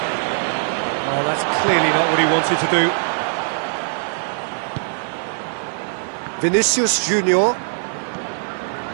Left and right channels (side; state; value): left; silent; 57 dB below the other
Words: Oh, that's clearly not what he wanted to do. Vinicius Junior.